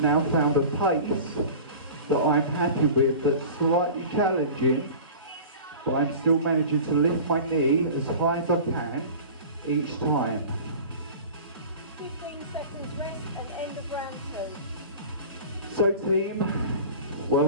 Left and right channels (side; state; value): both; inverted; correlation -0.38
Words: found a pace that I'm happy with, that's slightly challenging, but I'm still managing to lift my knee as high as I can each time. 15 seconds rest and end of round 2. So team,